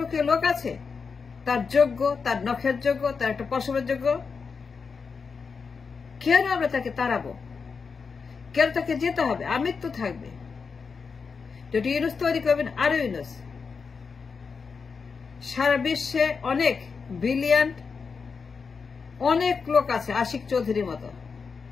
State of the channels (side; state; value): right; quieter; 5.3 dB